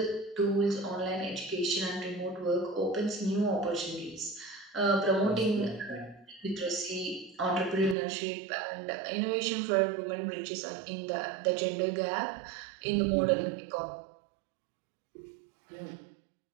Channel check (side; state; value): left; drops out; at 8.0 s